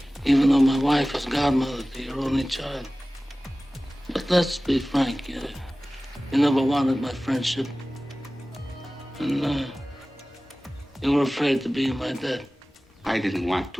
Even though my wife is godmother to your only child. But let's be frank, you never wanted my friendship. And you were afraid to be in my debt. I didn't want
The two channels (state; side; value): normal; both; correlation 0.97